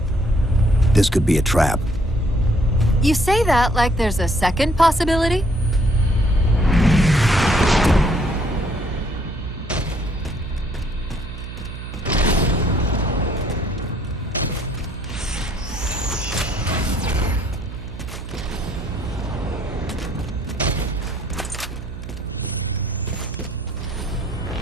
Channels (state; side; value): noise; right; hum, 10 dB below the sound